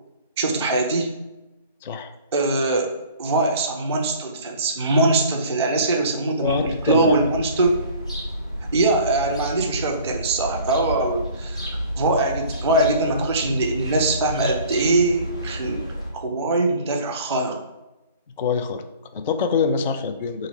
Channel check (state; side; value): inverted; both; correlation -0.47